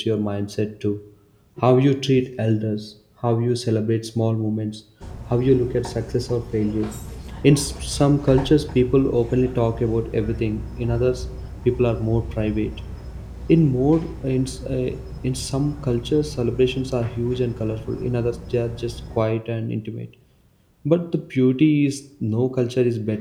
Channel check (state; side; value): identical; both; correlation 1.00